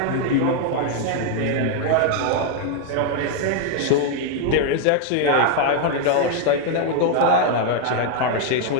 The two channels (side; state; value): both; different; correlation 0.00